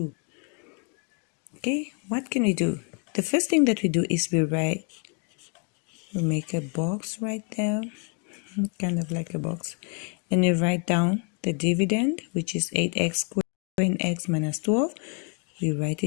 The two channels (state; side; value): quieter; right; 35.9 dB